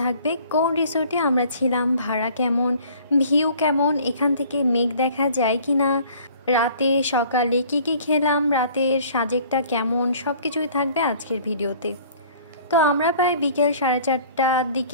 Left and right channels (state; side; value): inverted; both; correlation -0.52